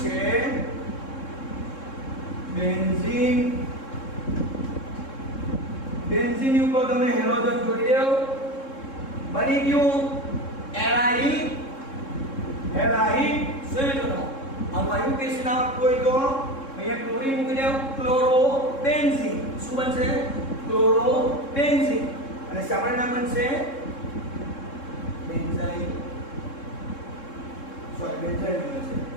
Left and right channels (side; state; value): right; late; 3.7 ms